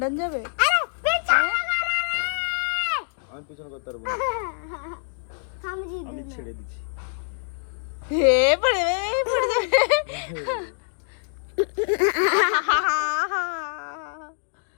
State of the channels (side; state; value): right; silent; digital silence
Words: যাবে? আমি পিছনে করতে পারবো না, আমি ছেড়ে দিচ্ছি। হে পড়ে পড়ে যাবে।